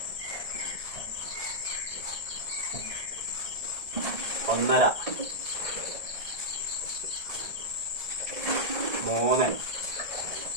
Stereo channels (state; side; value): late; left; 1.7 ms